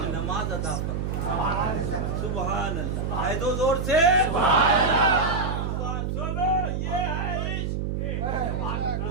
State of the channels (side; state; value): right; noise; hum, 2 dB below the sound